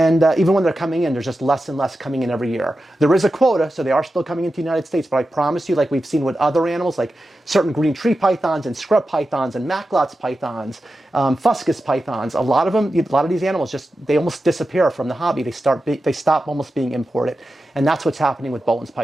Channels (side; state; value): both; normal; correlation 0.92